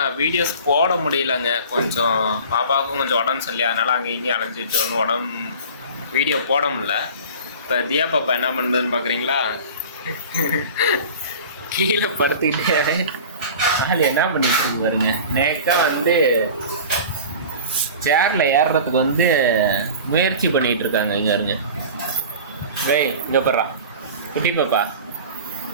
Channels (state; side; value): inverted; both; correlation -0.38